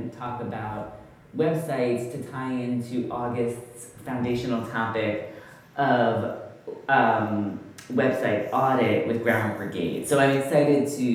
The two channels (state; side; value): identical; both; correlation 1.00